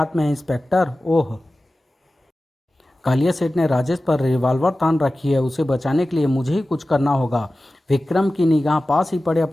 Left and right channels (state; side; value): normal; both; correlation 0.95